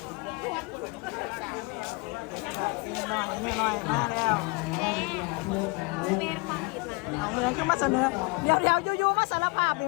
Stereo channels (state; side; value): quieter; right; 28.7 dB